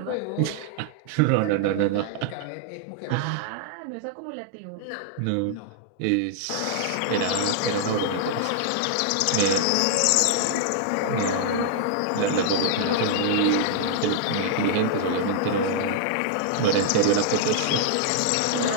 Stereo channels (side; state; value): both; different; correlation -0.01